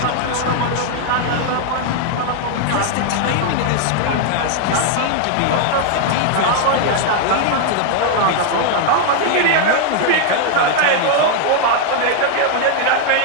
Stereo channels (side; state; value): both; different; correlation 0.00